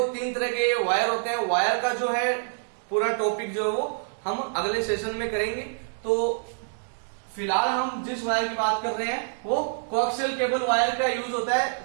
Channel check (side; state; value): left; silent; digital silence